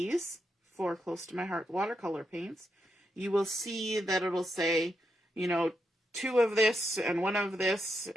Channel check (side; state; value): both; normal; correlation 0.83